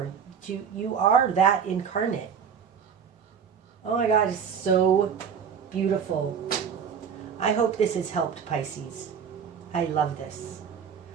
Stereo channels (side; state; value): left; quieter; 7.2 dB